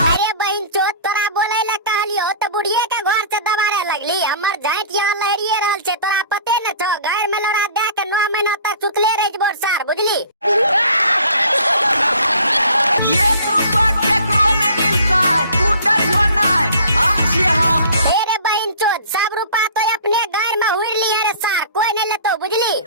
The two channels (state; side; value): inverted; both; correlation -0.46